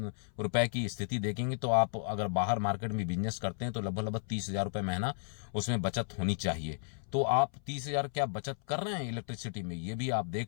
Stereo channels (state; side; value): silent; right; 55 dB below the other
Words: रुपए की स्थिति देखेंगे तो आप अगर बाहर मार्केट में बिजनेस करते हैं तो लगभग 30,000 रुपए महीना उसमें बचत होनी चाहिए। तो आप 30,000 क्या बचत कर रहे हैं इलेक्ट्रिसिटी में, ये भी आप